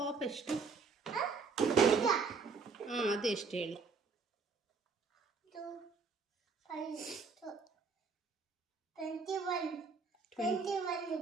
ಎಷ್ಟು? ಹಾಂ ಅದು ಎಷ್ಟು ಹೇಳಿ? ಇದು 21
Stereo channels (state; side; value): quieter; left; 4.8 dB